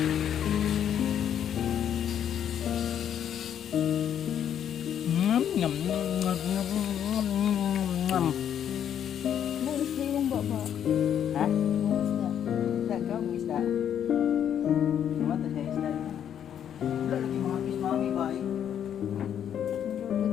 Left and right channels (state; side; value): quieter; right; 9.4 dB